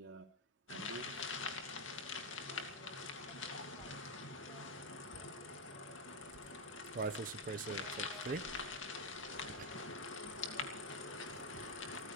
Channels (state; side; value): normal; both; correlation 0.04